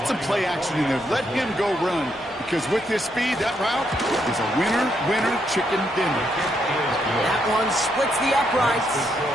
some play action in there. Let him go run, because with his speed, that route is a winner, chicken dinner. That one splits the uprights.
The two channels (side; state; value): both; normal; correlation 0.77